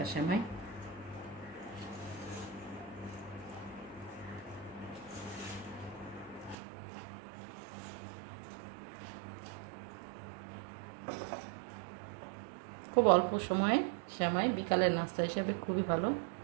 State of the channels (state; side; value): drops out; left; at 6.6 s